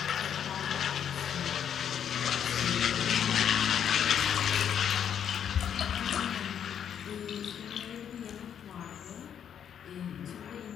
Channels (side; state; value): right; quieter; 8.8 dB